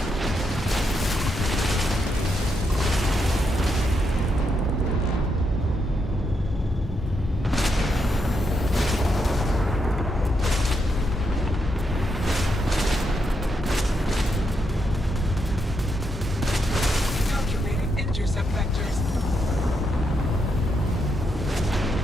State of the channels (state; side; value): normal; both; correlation 0.81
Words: Calculating intercept vectors.